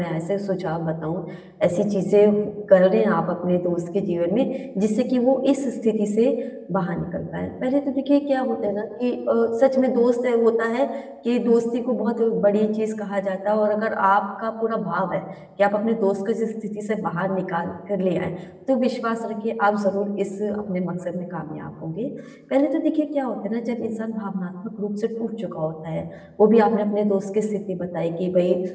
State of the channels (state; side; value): identical; both; correlation 1.00